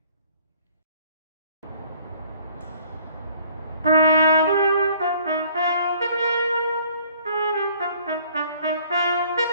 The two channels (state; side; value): inverted; both; correlation -0.57